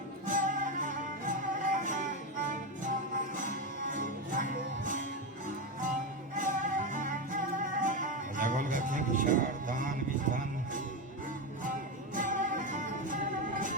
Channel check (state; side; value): normal; both; correlation 0.13